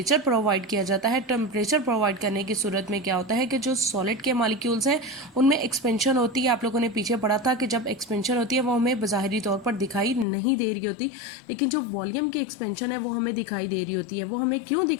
प्रोवाइड किया जाता है, टेम्परेचर प्रोवाइड करने की सूरत में क्या होता है कि जो सॉलिड के मॉलिक्यूल्स हैं उनमें एक्सपेंशन होती है। आप लोगों ने पीछे पढ़ा था कि जब एक्सपेंशन होती है वो हमें बाहरी तौर पर दिखाई नहीं दे रही होती, लेकिन जो वॉल्यूम की एक्सपेंशन है वो हमें दिखाई दे रही होती है। वो हमें क्यों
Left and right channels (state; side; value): drops out; right; at 10.2 s